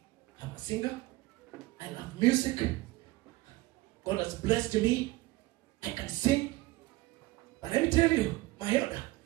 I'm a singer. I love music. God has blessed me. I can sing. But let me tell you, my elder,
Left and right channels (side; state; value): left; quieter; 20.0 dB